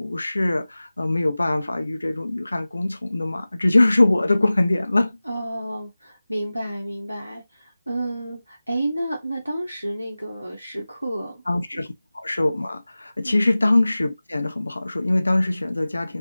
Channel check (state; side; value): inverted; both; correlation -0.98